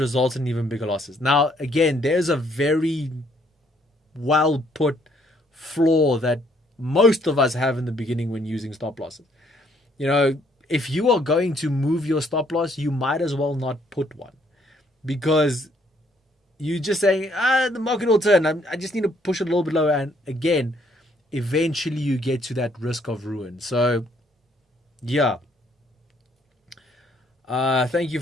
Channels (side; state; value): both; normal; correlation 0.67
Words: in even bigger losses. Now, again, there's a very well put flaw that most of us have in the beginning when using stop losses. If you are going to move your stop loss, you might as well not put one, because you're just saying, the market will turn. I just need to push it a little bit lower. And again, eventually you get to that risk of ruin. So, yeah. Thank you,